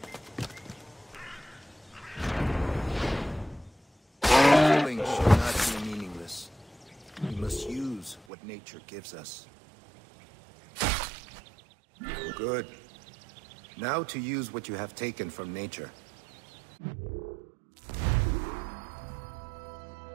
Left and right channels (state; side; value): drops out; left; at 8.2 s